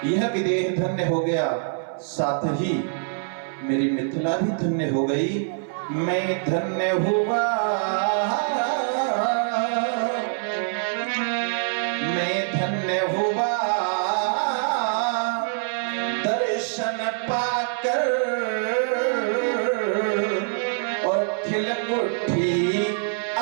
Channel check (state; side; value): silent; left; 59 dB below the other